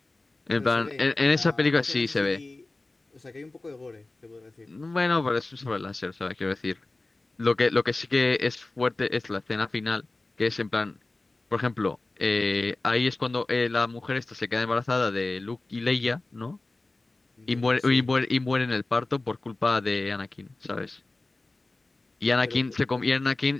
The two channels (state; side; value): quieter; right; 3.1 dB